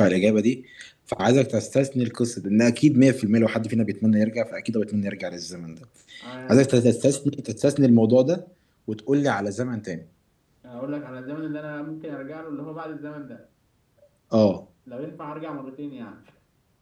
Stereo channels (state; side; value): identical; both; correlation 1.00